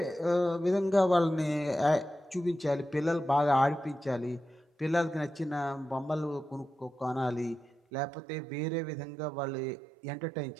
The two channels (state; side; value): drops out; left; at 7.8 s